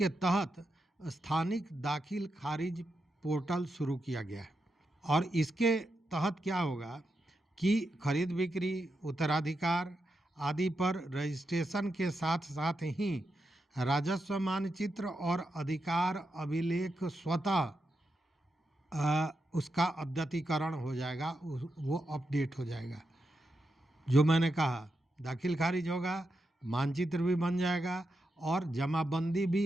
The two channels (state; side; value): normal; both; correlation 0.86